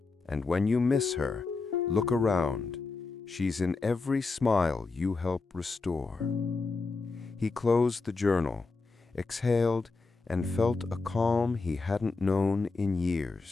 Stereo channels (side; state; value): right; quieter; 4.0 dB